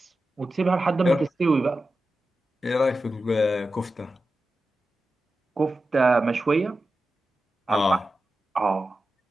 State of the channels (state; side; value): normal; both; correlation 0.92